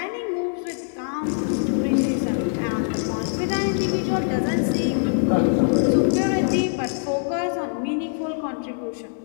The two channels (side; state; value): right; silent; 62 dB below the other